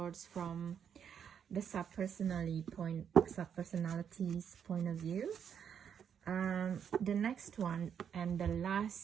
from the subpersonality's point of view. The next one and the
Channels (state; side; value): quieter; left; 8.0 dB